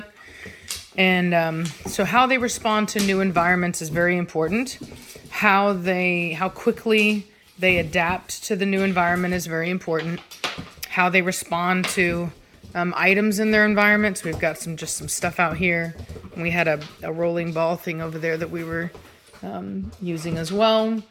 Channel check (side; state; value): both; identical; correlation 1.00